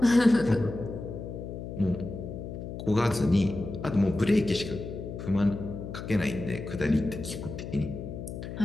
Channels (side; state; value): left; noise; hum, 8 dB below the sound